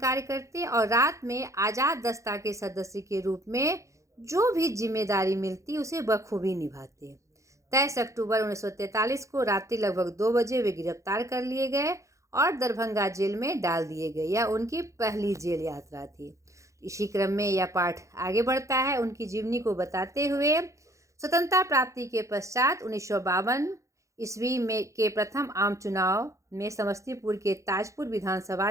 करते और रात में आजाद दस्ता के सदस्य के रूप में जो भी जिम्मेदारी मिलती उसे बखूबी निभाते। 23 अक्टूबर 1943 को रात्रि लगभग 2 बजे वे गिरफ्तार कर लिए गए और दरभंगा जेल में डाल दिए गए। यह उनकी पहली जेल यात्रा थी। इसी क्रम में यह पाठ आगे बढ़ता है उनकी जीवनी को बताते हुए। स्वतंत्रता प्राप्ति के पश्चात 1952 ईस्वी में के प्रथम आम चुनाव में समस्तीपुर के ताजपुर विधानसभा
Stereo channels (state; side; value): late; left; 0.15 ms